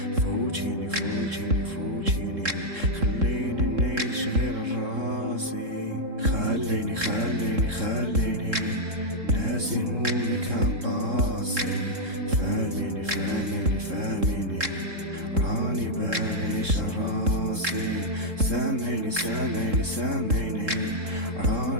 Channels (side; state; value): left; late; 3.7 ms